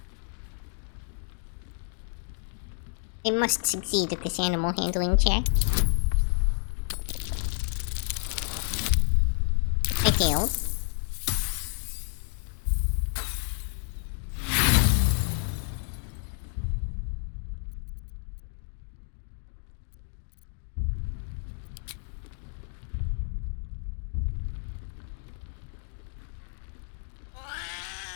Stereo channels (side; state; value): right; silent; 58 dB below the other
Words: I must succeed at this animal handling check. I failed.